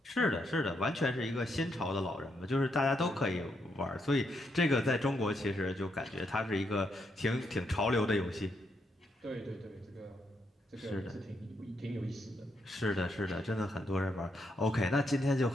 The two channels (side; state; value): both; normal; correlation 0.78